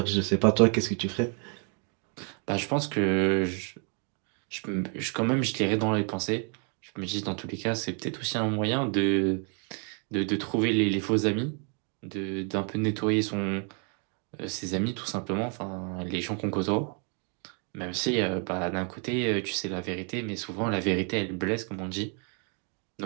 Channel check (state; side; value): quieter; left; 39.9 dB